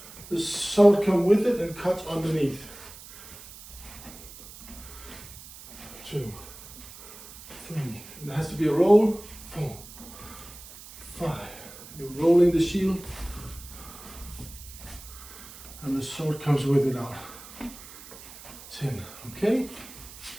the sword comes with it and cuts underneath. 2, 3, and it has to be a roll. 4, 5. You're rolling the shield, and the sword comes with it out. 10. Okay.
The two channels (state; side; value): noise; right; hiss, 17 dB below the sound